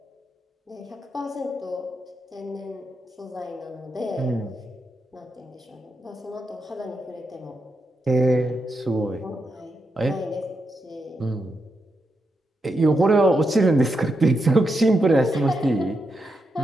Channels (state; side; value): normal; both; correlation 0.84